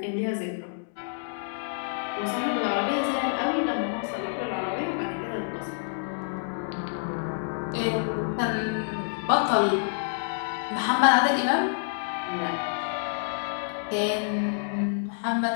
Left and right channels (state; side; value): silent; right; digital silence